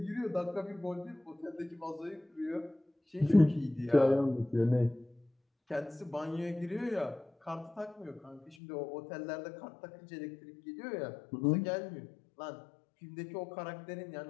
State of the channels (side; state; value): right; drops out; at 8.6 s